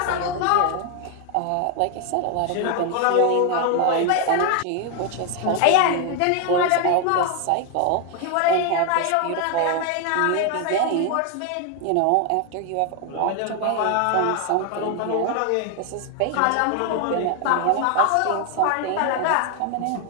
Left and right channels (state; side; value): different; both; correlation 0.01